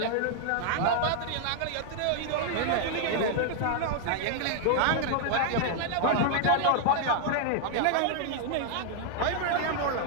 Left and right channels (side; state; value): both; different; correlation 0.00